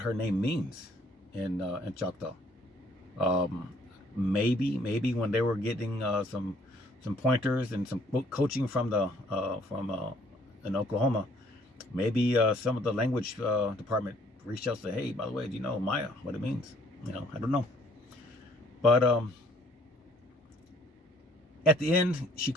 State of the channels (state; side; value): normal; both; correlation 0.62